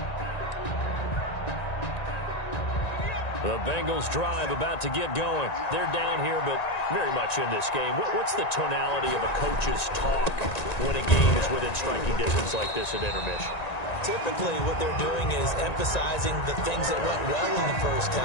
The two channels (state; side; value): late; right; 1.9 ms